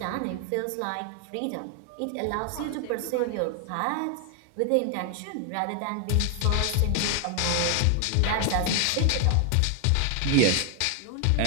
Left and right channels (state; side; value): different; both; correlation 0.00